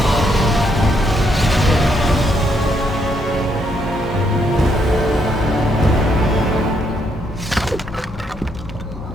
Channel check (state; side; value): normal; both; correlation 0.75